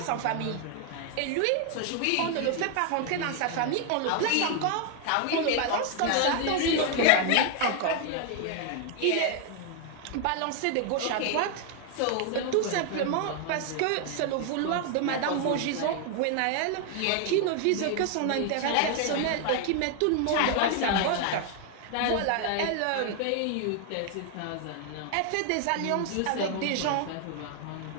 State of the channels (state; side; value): different; both; correlation 0.00